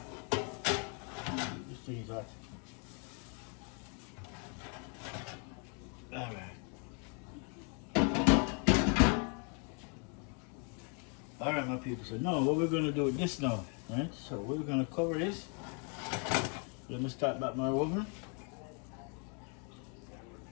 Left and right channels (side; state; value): right; quieter; 38.2 dB